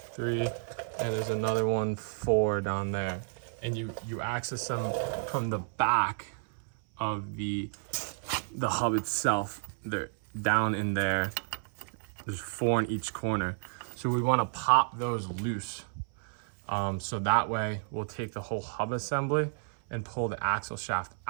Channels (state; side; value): silent; left; 56 dB below the other